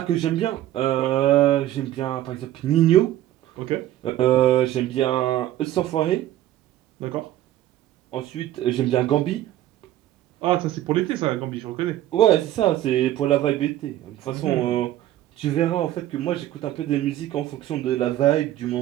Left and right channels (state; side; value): quieter; left; 13.5 dB